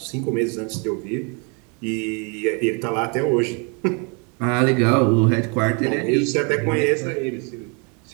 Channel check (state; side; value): quieter; left; 34.6 dB